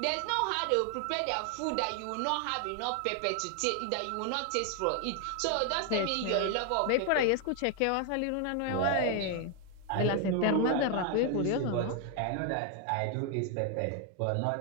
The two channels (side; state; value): both; different; correlation 0.00